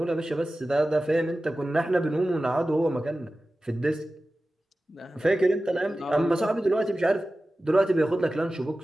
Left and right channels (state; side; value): normal; both; correlation 0.95